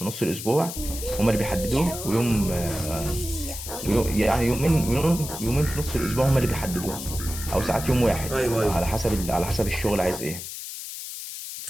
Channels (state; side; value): noise; left; hiss, 9 dB below the sound